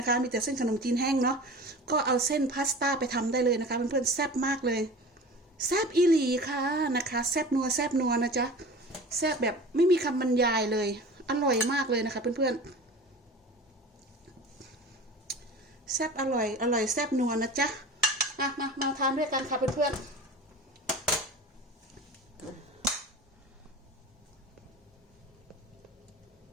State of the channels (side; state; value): both; normal; correlation 0.37